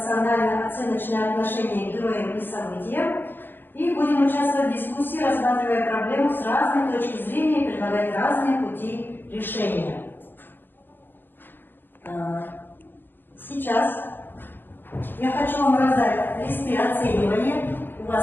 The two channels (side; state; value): right; late; 0.096 ms